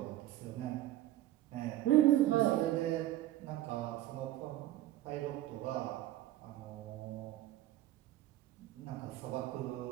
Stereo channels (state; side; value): quieter; left; 14.5 dB